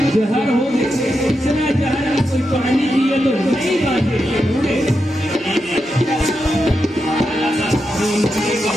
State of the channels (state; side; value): normal; both; correlation 0.87